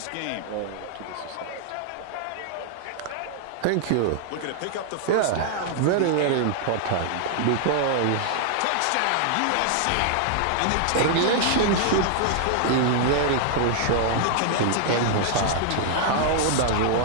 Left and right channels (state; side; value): different; both; correlation -0.01